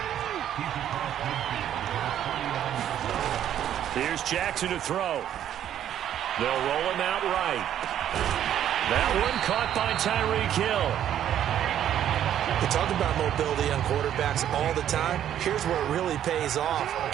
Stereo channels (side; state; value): left; quieter; 10.6 dB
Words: Here's Jackson to throw. They'll roll him out right. That one caught by Tyreek Hill. We talk about mobility on quarterbacks all the time. Here's where it really pays off.